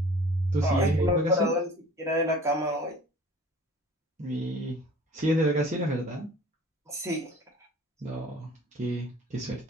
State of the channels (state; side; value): normal; both; correlation 0.47